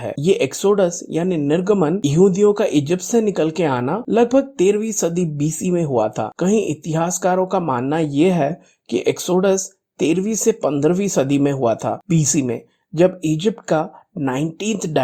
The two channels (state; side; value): identical; both; correlation 1.00